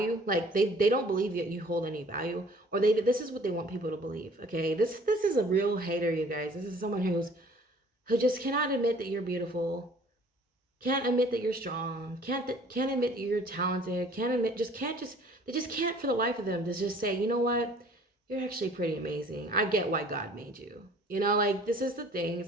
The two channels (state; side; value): normal; both; correlation 0.53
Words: Like they don't believe that you hold any value, or this is what they want people to believe. Okay, this is a real hater, you guys. This is someone who just cannot admit that you're beautiful, can't admit that you're strong, can't admit that you're talented, they just can't for the life of them to just say, you know what, you're actually pretty amazing. I get why God made you. You know, like this is the thing.